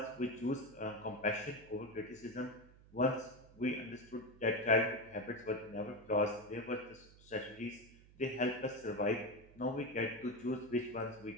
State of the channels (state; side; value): noise; right; hum, 23 dB below the sound